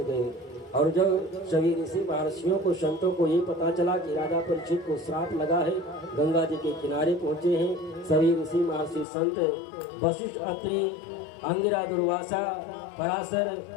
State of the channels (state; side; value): drops out; right; at 9.1 s